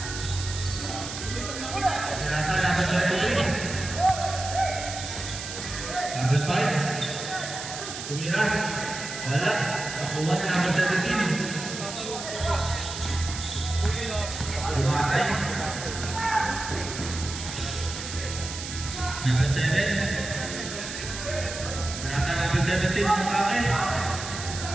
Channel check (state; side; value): noise; right; hiss, 8 dB below the sound